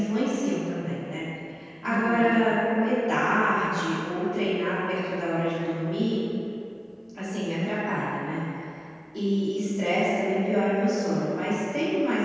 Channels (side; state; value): both; identical; correlation 1.00